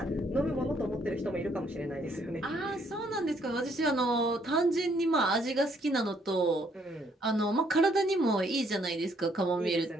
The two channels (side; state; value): both; normal; correlation 0.68